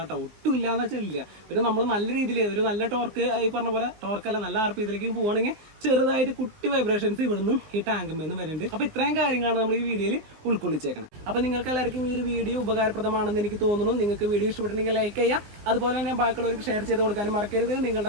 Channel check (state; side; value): late; left; 20 ms